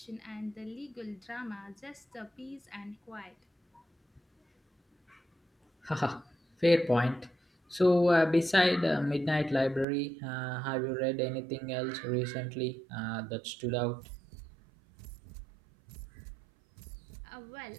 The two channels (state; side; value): drops out; left; at 9.9 s